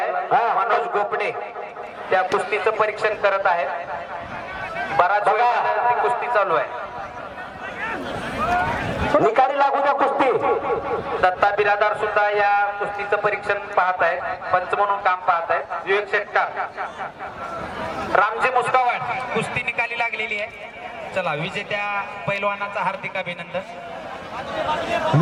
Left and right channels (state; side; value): identical; both; correlation 1.00